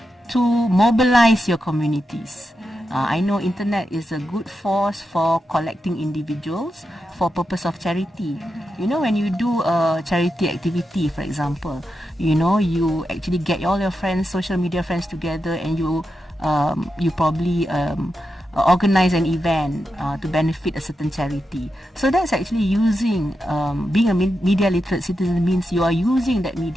to mobilize your communities. I know internet is a good force for collecting individuals for purpose of charity. When you do a charity activity, for example, you actually get all your friends, social media friends together, and you probably organize an event to benefit a certain charity. So that's actually using, being a media literate citizen means you are using that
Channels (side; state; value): both; normal; correlation 0.88